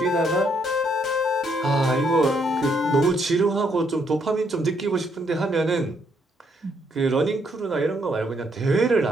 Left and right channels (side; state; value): both; normal; correlation 0.73